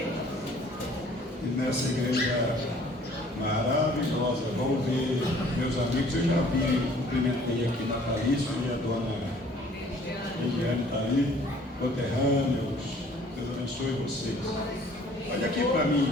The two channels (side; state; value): both; normal; correlation 0.55